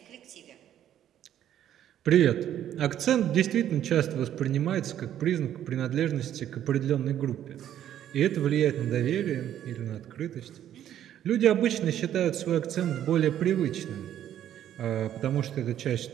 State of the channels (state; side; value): quieter; left; 11.0 dB